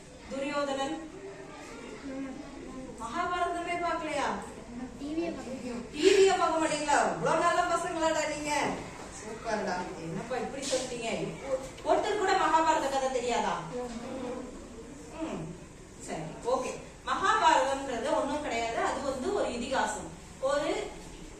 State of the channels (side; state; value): both; identical; correlation 1.00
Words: துரியோதனன், மகாபாரதமே பாக்கலையா? டிவிய பார்க்க மாட்டீங்களா? இவ்வளவு நல்ல பசங்களாடா நீங்க. சூப்பர்டா. என்னப்பா இப்படி சொல்லிட்டீங்க? ஒருத்தர் கூட மகாபாரத கதை தெரியாதா? சரி, ஓகே. மகாபாரதம்ன்றது ஒண்ணும் கிடையாது. அது வந்து ஒரு இதிகாசம். ஒரு